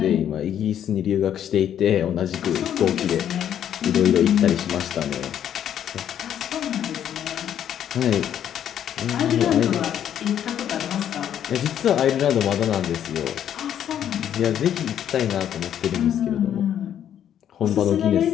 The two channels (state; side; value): quieter; right; 10.0 dB